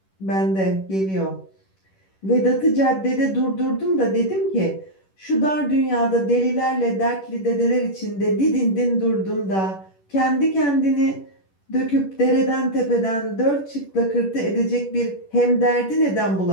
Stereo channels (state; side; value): late; right; 10 ms